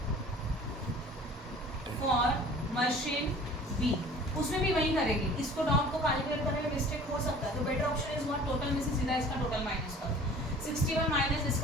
for machine B, उसमें भी वही करेंगे, इसको डॉट को कैलकुलेट करने में मिस्टेक हो सकता है, तो better option is what total में से सीधा इसका टोटल माइनस करो, 61 माइनस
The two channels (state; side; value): normal; both; correlation 0.46